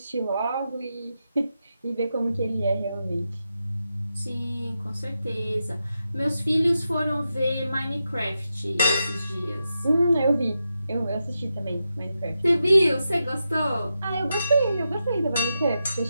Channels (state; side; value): inverted; both; correlation -0.88